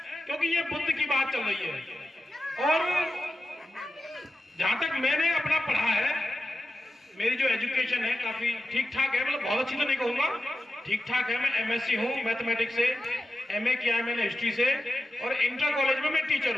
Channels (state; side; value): normal; both; correlation 0.92